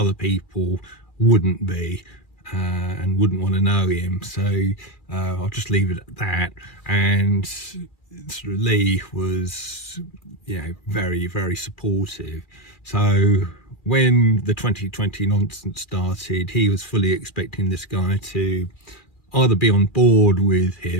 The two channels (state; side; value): late; right; 2.4 ms